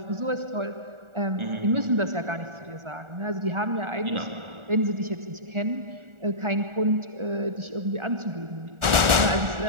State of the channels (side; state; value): left; late; 1.4 ms